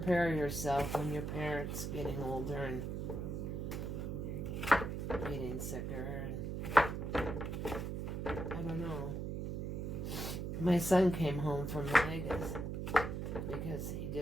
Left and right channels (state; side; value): noise; right; hum, 3 dB below the sound